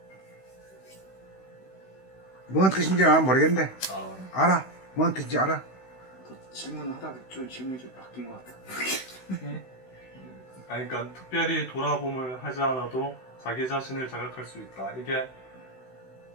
뭔 뜻인지 난 모르겠는데. 아, 알아? 뭔 뜻인지 알아? 질문하다가 좀 질문이 좀 바뀐 것 같아. 아니, 그러니까 특별히 돌아봄을 하지 않아도 자기 자신을 자각할 수 있다. 이게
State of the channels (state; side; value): late; right; 16 ms